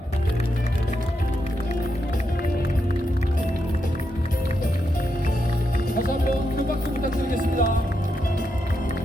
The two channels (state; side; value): normal; both; correlation 0.83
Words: 다시 한번 큰 박수 부탁드리겠습니다.